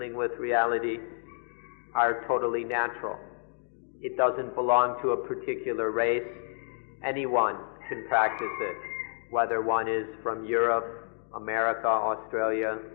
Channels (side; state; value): right; silent; 58 dB below the other